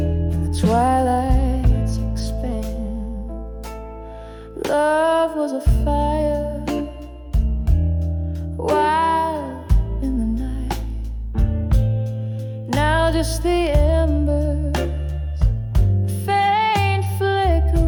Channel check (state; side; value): identical; both; correlation 1.00